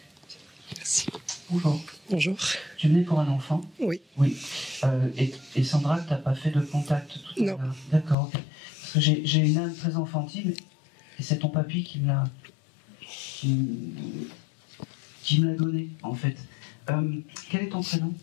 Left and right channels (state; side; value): drops out; right; at 8.2 s